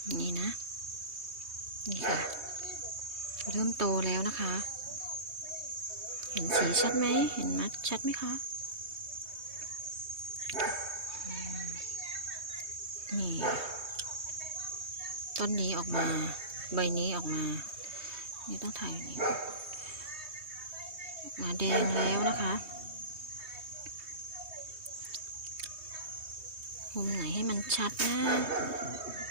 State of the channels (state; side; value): late; left; 3.2 ms